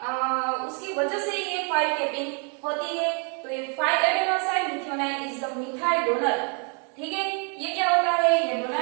वजह से ये 5 कैपिंग होती है। तो ये 5 adenosine methyl is the methyl donor, ठीक है। ये क्या होता है, ये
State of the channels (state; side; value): quieter; left; 38.2 dB